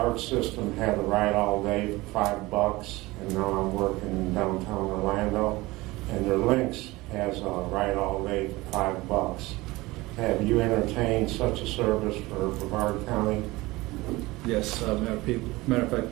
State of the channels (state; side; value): quieter; left; 20.7 dB